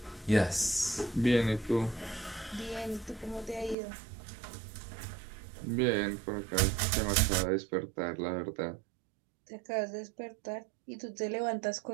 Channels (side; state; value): left; drops out; at 3.8 s